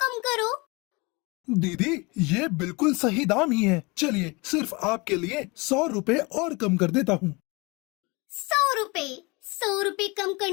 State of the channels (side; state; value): right; quieter; 26.6 dB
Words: करो। दीदी, ये बिल्कुल सही दाम ही है। चलिए, सिर्फ आपके लिए 100 रुपए और कम कर देता हूँ। 100 रुपए कम